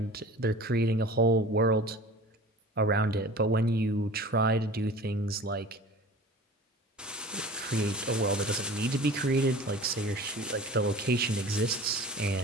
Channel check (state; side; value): normal; both; correlation 0.41